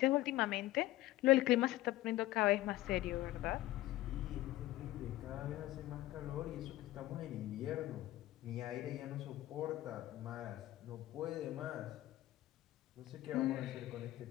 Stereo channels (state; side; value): quieter; right; 16.1 dB